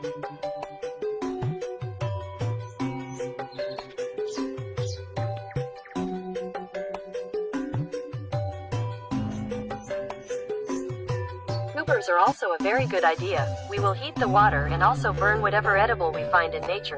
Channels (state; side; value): identical; both; correlation 1.00